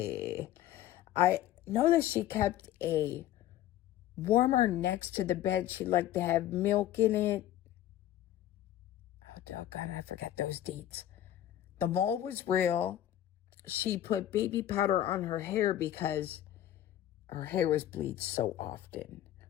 I know that she kept a warmer next to the bed. She liked to have milk in it. Oh, doggone, I forget those deets. The mole was real. She put baby powder on her hair because her hair was bleached so often.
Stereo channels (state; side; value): quieter; right; 12.6 dB